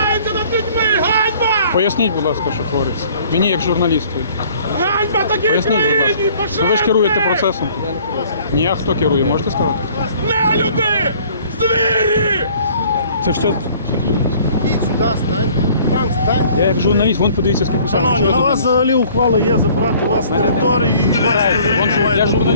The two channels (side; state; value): both; inverted; correlation -0.54